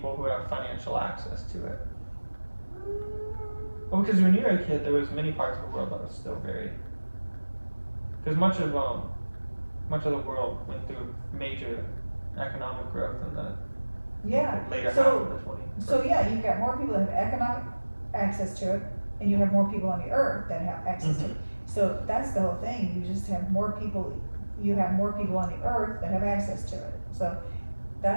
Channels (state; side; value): inverted; both; correlation -1.00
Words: who have financial access to it. Well, because when you were a kid, there was many parts of the world that was still very. Because much of the world went through major economic growth in the Yeah. later half of the 20th. So yeah, you've got more people that have access to it, and you have more people on the earth that have access to Mhm. it. So that's the whole thing, you just have more people, you have more people on the earth that have access to it, so